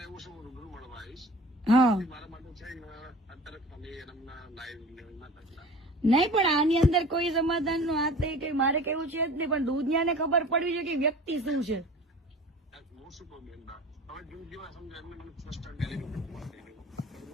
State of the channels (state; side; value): normal; both; correlation 0.41